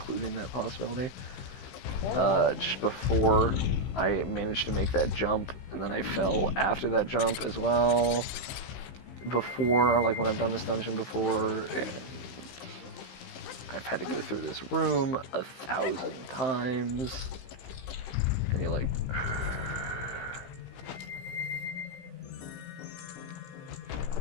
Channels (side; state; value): right; late; 15 ms